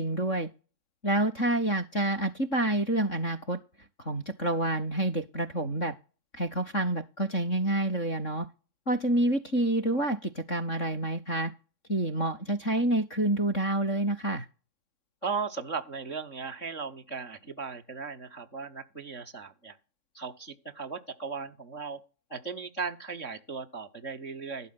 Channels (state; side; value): late; right; 3.6 ms